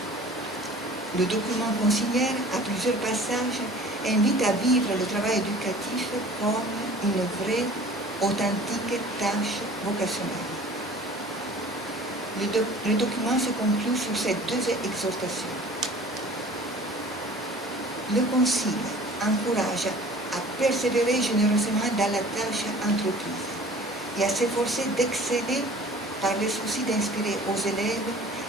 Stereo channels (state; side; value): normal; both; correlation 0.46